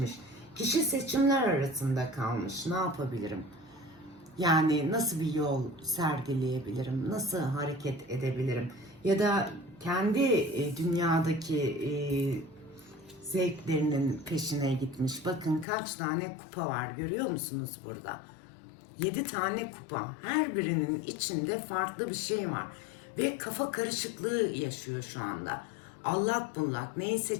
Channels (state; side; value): drops out; right; at 15.7 s